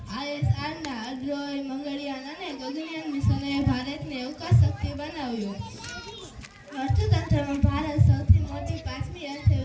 ISRના અડ્રોય, મંગળયાન અને ગગનયાન મિશનોએ ભારતને અવકાશ શક્તિ બનાવ્યો। અર્થતંત્રમાં ભારત સૌથી મોટી 5મી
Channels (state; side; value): identical; both; correlation 1.00